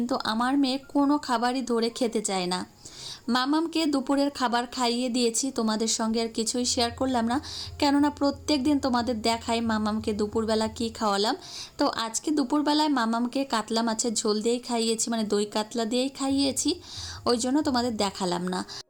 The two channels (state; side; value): identical; both; correlation 1.00